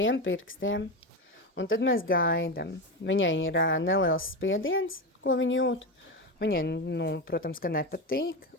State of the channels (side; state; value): both; normal; correlation 0.18